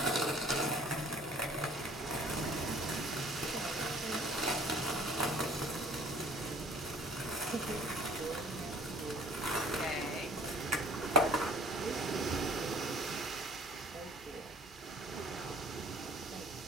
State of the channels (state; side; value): normal; both; correlation 0.51